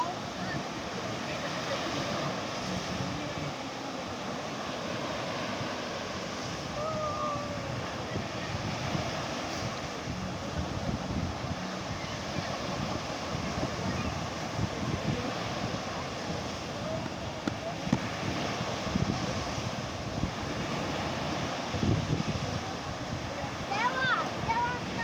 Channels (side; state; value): both; identical; correlation 1.00